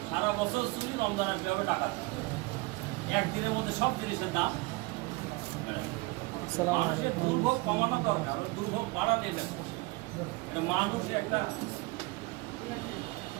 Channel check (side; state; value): left; quieter; 24.4 dB